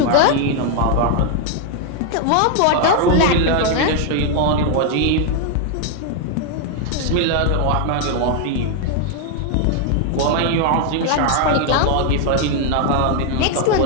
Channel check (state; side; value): different; both; correlation 0.00